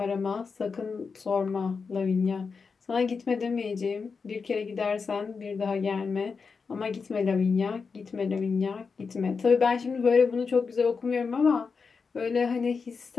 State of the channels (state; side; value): quieter; right; 5.1 dB